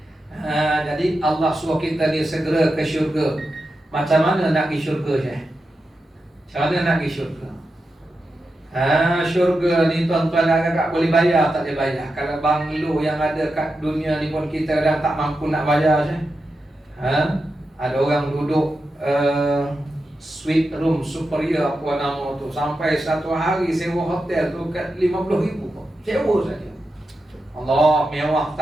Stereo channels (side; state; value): both; normal; correlation 0.89